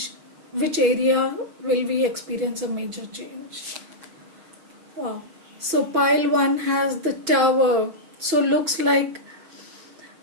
Which area will we experience a major change? Wow. So pile 1 has the tower. So looks like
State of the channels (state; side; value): late; left; 6.1 ms